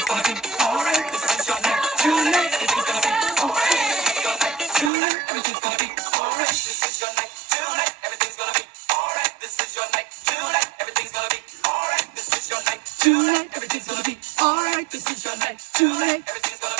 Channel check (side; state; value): left; drops out; at 4.9 s